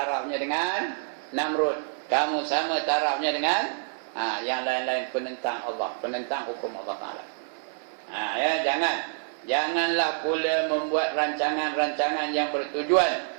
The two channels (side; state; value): left; silent; 60 dB below the other